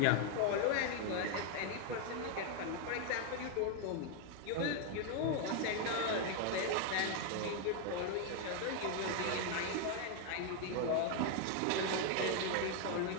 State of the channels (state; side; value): different; both; correlation 0.00